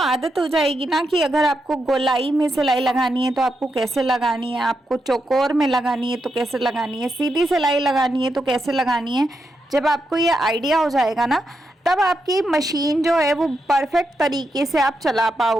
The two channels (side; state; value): both; normal; correlation 0.84